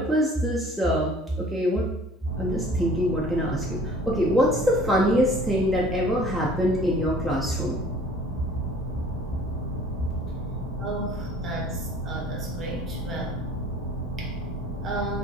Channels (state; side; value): normal; both; correlation 0.50